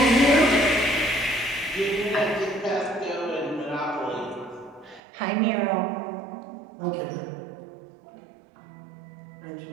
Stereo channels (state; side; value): drops out; left; at 5.0 s